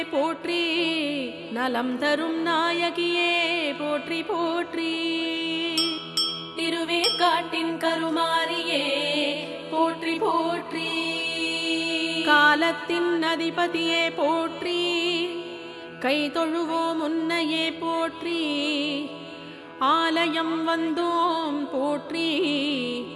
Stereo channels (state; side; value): identical; both; correlation 1.00